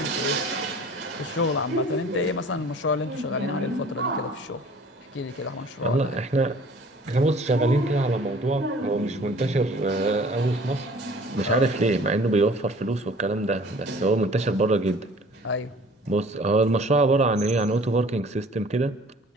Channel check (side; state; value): both; normal; correlation 0.50